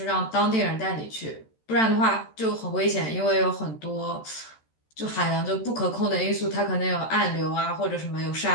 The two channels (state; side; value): late; right; 13 ms